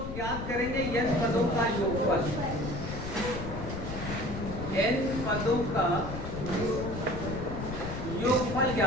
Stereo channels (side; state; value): left; noise; rumble, 7 dB below the sound